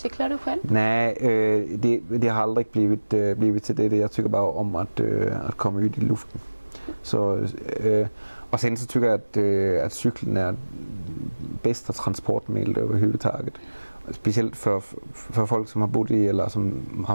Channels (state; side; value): inverted; both; correlation -1.00